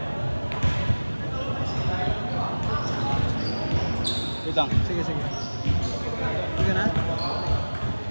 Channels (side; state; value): both; inverted; correlation -1.00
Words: Wait lang. Sige, sige. Sige na?